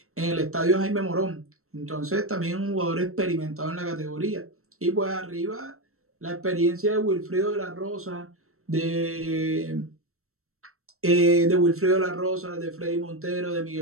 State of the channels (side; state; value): left; late; 0.63 ms